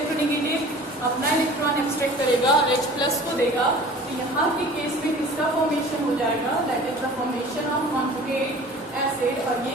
अपना इलेक्ट्रॉन एक्सट्रैक्ट करेगा और H+ को देगा। तो यहाँ के केस में किसका फॉर्मेशन हो जाएगा, that is the formation of conjugate acid, और ये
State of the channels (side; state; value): both; normal; correlation 0.44